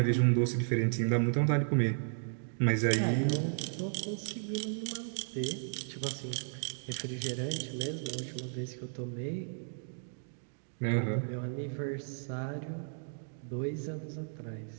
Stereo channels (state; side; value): silent; left; digital silence